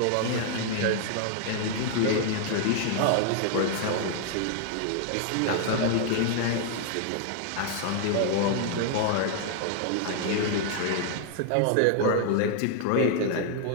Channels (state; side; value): different; both; correlation 0.00